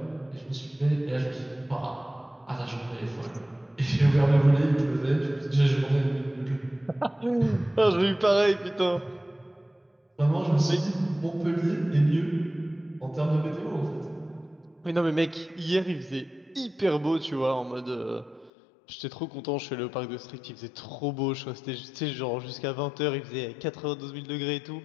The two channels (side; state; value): right; drops out; at 18.5 s